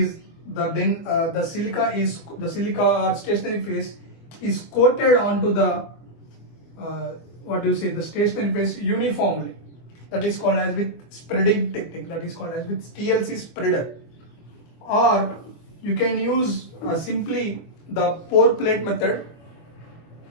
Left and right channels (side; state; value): right; late; 24 ms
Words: the silica or stationary phase is coated onto the the stationary phase uniformly. That is called as with spreading technique. That is called as with TLC spreader. Or you can use simply the pour plate method.